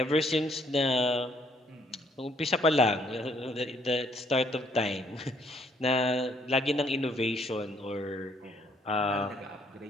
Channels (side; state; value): both; normal; correlation 0.67